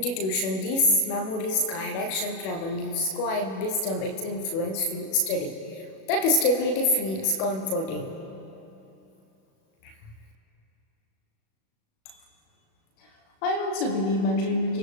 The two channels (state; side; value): late; right; 37 ms